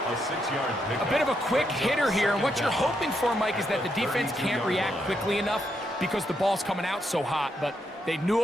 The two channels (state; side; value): normal; both; correlation 0.80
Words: A 6-yard pickup. A bit of a quick hitter here, and what you're hoping for, Mike, is that the defense can't react quickly enough because the ball's coming out so hot, but they knew